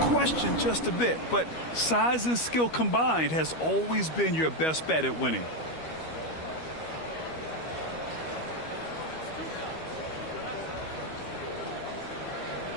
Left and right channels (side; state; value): right; late; 13 ms